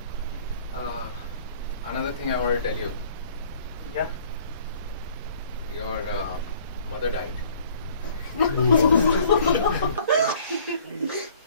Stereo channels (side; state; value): both; inverted; correlation -0.56